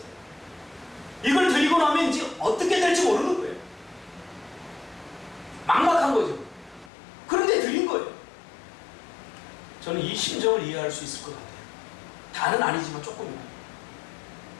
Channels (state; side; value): drops out; right; at 6.9 s